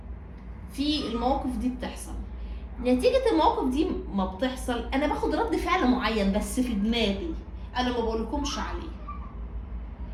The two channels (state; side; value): identical; both; correlation 1.00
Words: في المواقف دي بتحصل. نتيجة المواقف دي ما بتحصل انا باخد رد فعل معين بس في دماغي، انا ما بقولكمش عليه.